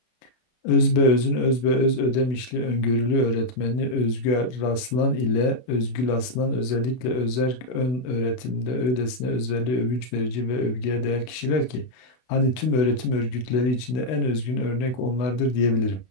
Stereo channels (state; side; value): late; right; 32 ms